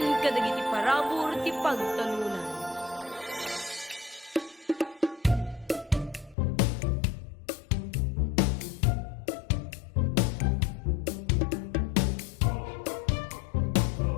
kadagiti parabor ti pagtalunan.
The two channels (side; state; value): right; drops out; at 6.4 s